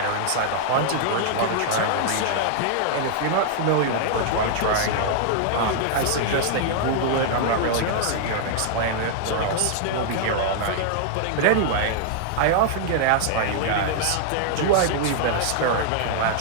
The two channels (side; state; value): both; different; correlation -0.01